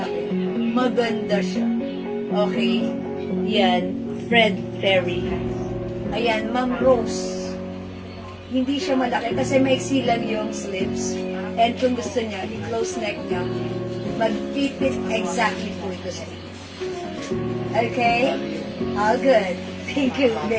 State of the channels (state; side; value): identical; both; correlation 1.00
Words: Maganda siya. Okay? Yan, Fred Perry. Ayan, Ma'am Rose. Hindi siya malaki kasi maiksi lang yung slits. And kung gusto niya, i-close neck niya, mag-fit exactly po ito sa inyo. Okay? All good. Thank you.